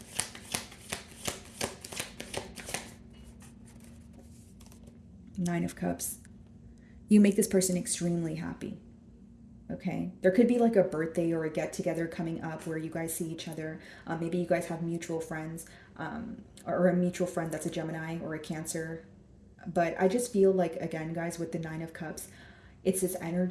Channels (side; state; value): both; identical; correlation 1.00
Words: Nine of Cups. You make this person extremely happy. Okay, there could be like a birthday or a get together coming up where you guys see each other. Maybe you guys have mutual friends, or a mutual friend that's a Gemini or a Cancer. But I just feel like, again, guys, with the Nine of Cups, it's this